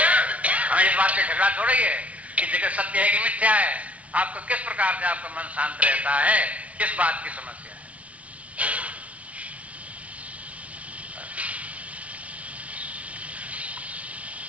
हमें इस बात से झगड़ा थोड़ा ही है कि जगत सत्य है कि मिथ्या है। आपको किस प्रकार से आपका मन शांत रहता है, किस बात की समस्या है?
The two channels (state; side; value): late; left; 0.066 ms